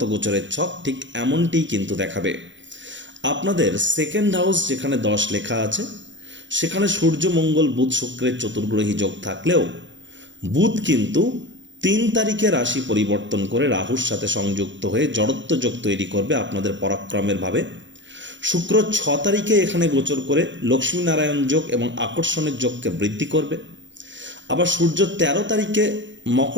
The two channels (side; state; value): left; late; 0.54 ms